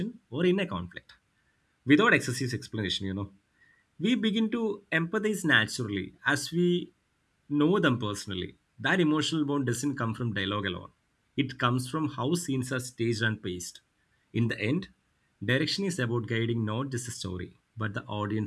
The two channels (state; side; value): identical; both; correlation 1.00